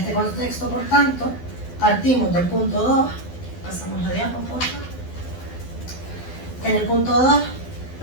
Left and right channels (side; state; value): right; late; 12 ms